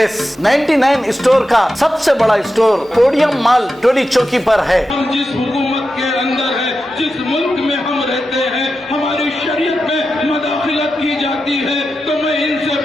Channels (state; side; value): normal; both; correlation 0.90